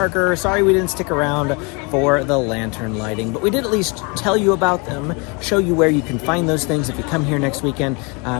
Sorry we didn't stick around for the lantern lighting, but we did at least tell you about them, show you where you can find those things if you come here next weekend,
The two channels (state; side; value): quieter; right; 30.8 dB